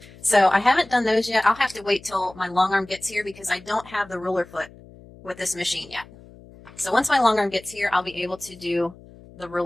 So I haven't done those yet. I'll have to wait till my long arm gets here because I don't have the ruler foot with this machine yet. So once my long arm gets here, I'll be able to do the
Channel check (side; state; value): left; noise; hum, 22 dB below the sound